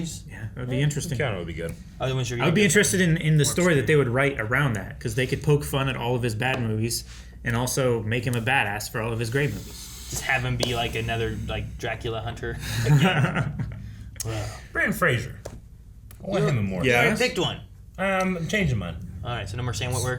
Yeah, that would be interesting. Keanu would be good. I wasn't sure you I would be were- interested in the story that they would write around that, because they could poke fun at all of his bad movies and also make him a badass for all of his great movies. Just have him be like another like Dracula hunter. Brandon Fraser. I want him in more. You already picked one. I'm changing mine. All right, so no more Sam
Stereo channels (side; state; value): both; identical; correlation 1.00